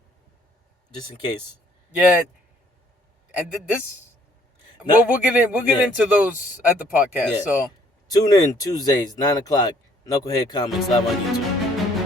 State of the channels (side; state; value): both; normal; correlation 0.62